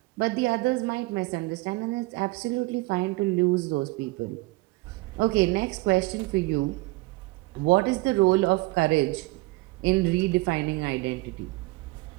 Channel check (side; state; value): left; quieter; 22.8 dB